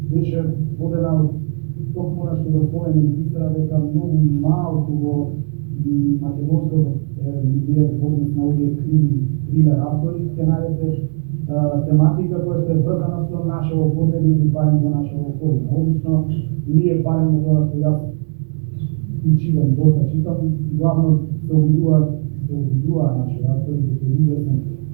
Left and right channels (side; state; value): left; silent; digital silence